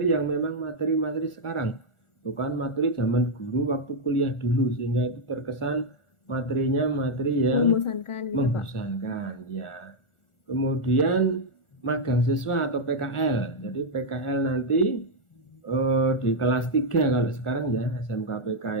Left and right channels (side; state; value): right; late; 1.4 ms